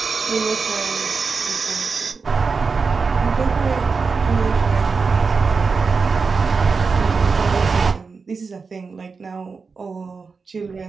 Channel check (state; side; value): quieter; left; 4.8 dB